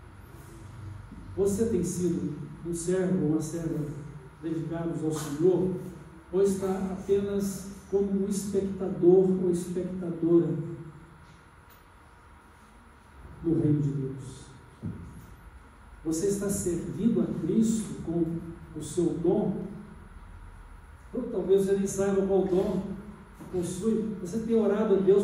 Você tem sido um servo ou uma serva dedicados ao Senhor, ou está apenas como um espectador ou espectadora do reino de Deus? Você está servindo a Cristo com o seu dom? Ou talvez você nem saiba qual dom possui. Você tem orado a Deus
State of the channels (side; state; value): both; identical; correlation 1.00